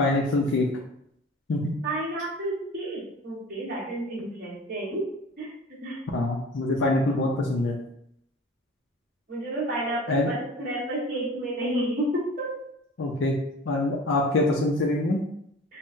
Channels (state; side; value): normal; both; correlation 0.41